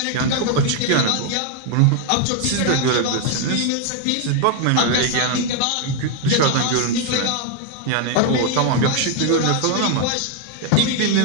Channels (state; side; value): different; both; correlation 0.00